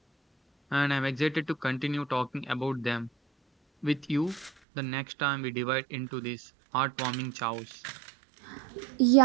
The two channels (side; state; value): left; drops out; at 4.5 s